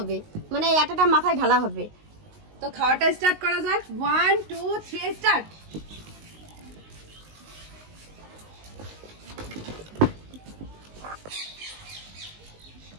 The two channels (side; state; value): left; late; 19 ms